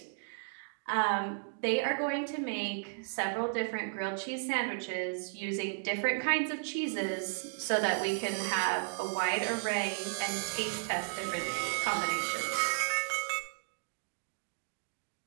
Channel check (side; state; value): left; silent; digital silence